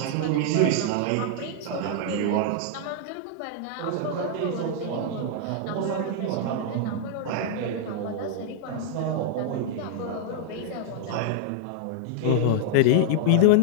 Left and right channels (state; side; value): different; both; correlation -0.01